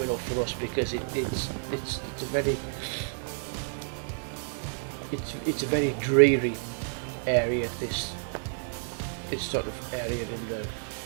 enough for us because it's a very dreary area, this sort of area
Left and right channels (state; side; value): silent; left; digital silence